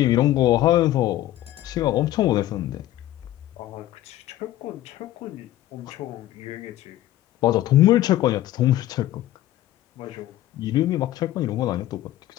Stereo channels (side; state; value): right; quieter; 14.2 dB